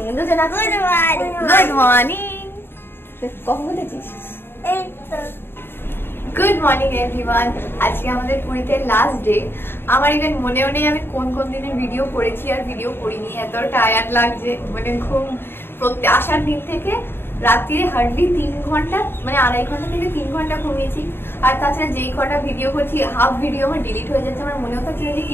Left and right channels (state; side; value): late; right; 0.11 ms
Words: ইন্দুজানা গুড মর্নিং। কখন বলেছিস? Good morning everyone. আজকে আমাদের পুরীতে লাস্ট ডে। আমার ইভেন মনেও নেই আমি কোন কোন দিনে ভিডিও করেছি আর ভিডিও করিনি। এত টায়ার্ড লাগছে, মানে ঘুম আসার দিন থেকে রাত্রিরে হার্ডলি 3 ঘন্টা, মানে 2.5 ঘন্টা থেকে 3 ঘন্টা ঘুমিয়েছি। আর তাছাড়া যেই কটা ভিডিও করছি হাফ ভিডিও আমার ডিলিট হয়ে যাচ্ছে। আমার মনেও থাকছে যে